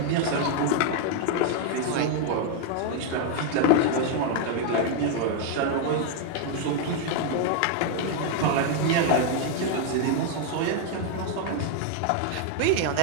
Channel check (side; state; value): both; different; correlation 0.00